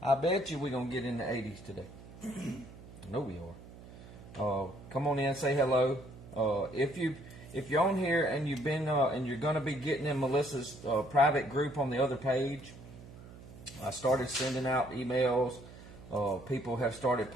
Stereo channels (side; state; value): right; noise; hum, 17 dB below the sound